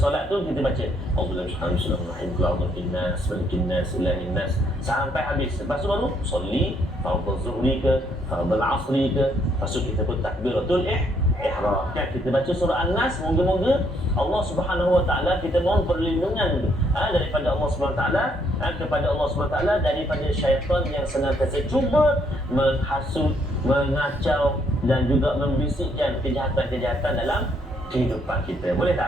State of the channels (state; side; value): normal; both; correlation 0.70